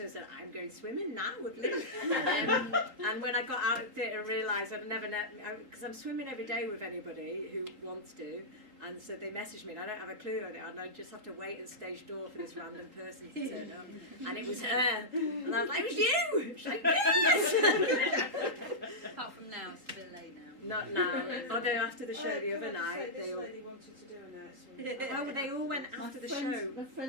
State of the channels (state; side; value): late; left; 3.8 ms